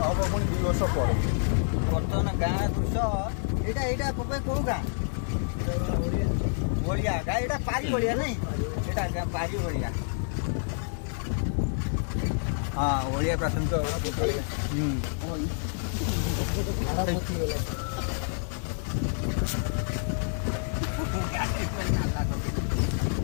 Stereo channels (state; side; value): silent; right; digital silence